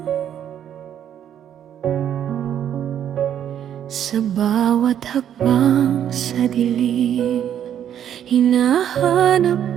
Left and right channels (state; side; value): quieter; left; 9.9 dB